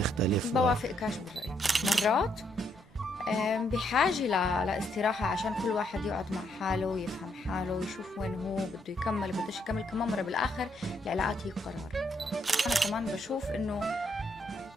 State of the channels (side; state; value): both; normal; correlation 0.74